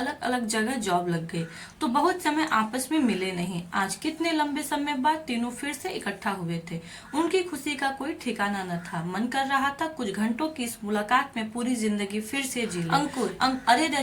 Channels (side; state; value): both; identical; correlation 1.00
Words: अलग जगह जॉब लग गई, तो बहुत समय आपस में मिले नहीं। आज कितने लंबे समय बाद तीनों फिर से इकट्ठा हुए थे। उनकी खुशी का कोई ठिकाना न था। मन कर रहा था कुछ घंटों की इस मुलाकात में पूरी जिंदगी फिर से जी ले। अंकुर, अरे